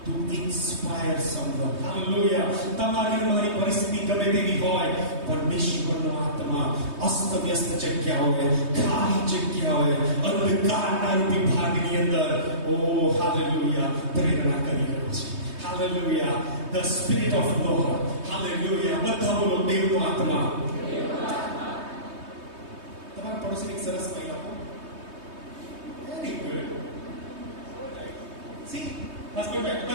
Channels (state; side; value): late; left; 3.2 ms